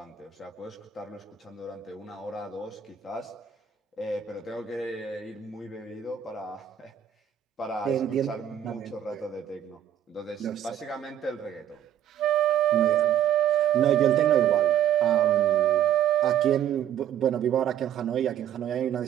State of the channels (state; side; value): quieter; left; 10.0 dB